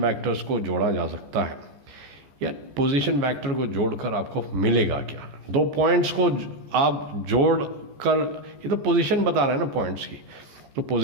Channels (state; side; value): late; left; 14 ms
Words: वेक्टर्स को जोड़ा जा सकता है या पोजीशन वेक्टर को जोड़कर आपको मिलेगा क्या. दो पॉइंट्स को आप जोड़कर, ये तो पोजीशन बता रहे हैं ना पॉइंट्स की, तो